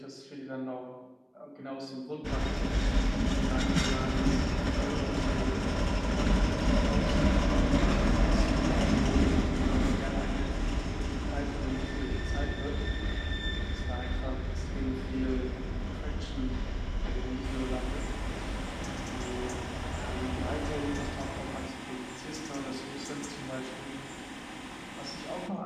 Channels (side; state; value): both; identical; correlation 1.00